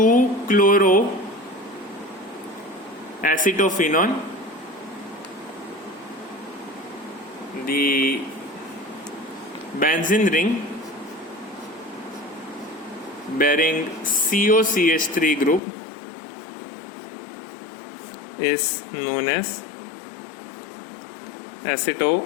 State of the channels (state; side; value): drops out; right; at 15.6 s